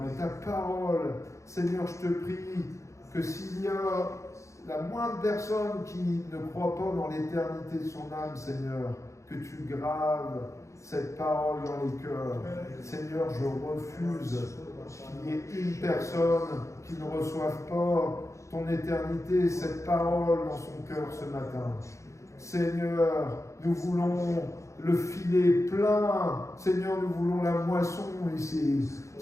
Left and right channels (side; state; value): right; late; 0.15 ms